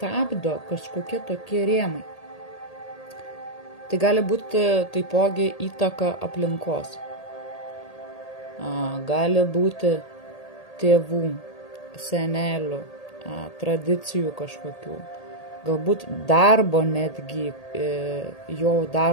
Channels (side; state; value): right; late; 1.8 ms